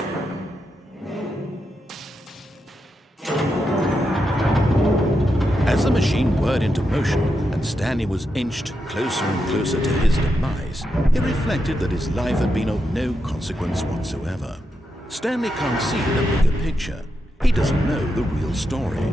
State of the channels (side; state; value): both; normal; correlation 0.85